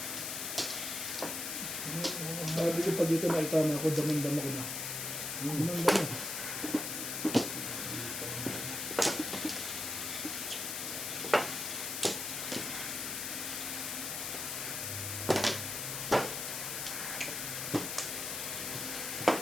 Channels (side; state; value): left; noise; hiss, 3 dB below the sound